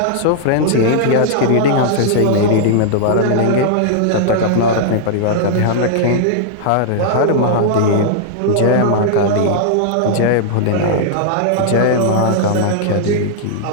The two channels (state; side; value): different; both; correlation -0.01